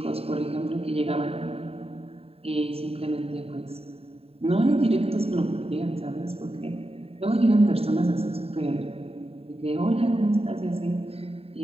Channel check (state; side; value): late; left; 0.29 ms